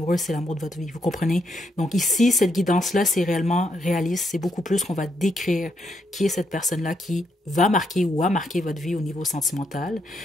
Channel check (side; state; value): both; normal; correlation 0.77